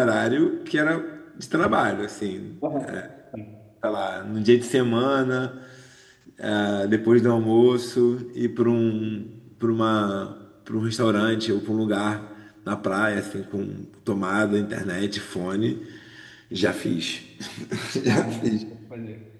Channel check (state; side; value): identical; both; correlation 1.00